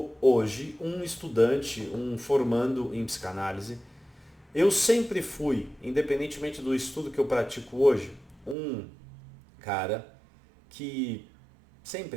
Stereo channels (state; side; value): drops out; left; at 8.6 s